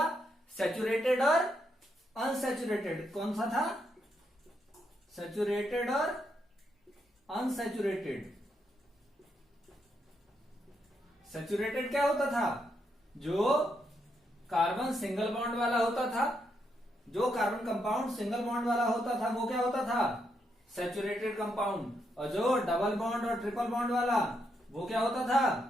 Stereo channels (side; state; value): both; normal; correlation 0.79